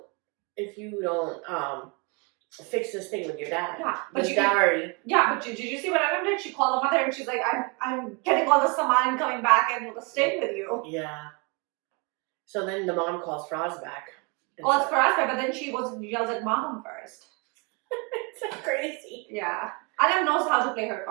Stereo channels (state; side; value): quieter; left; 31.8 dB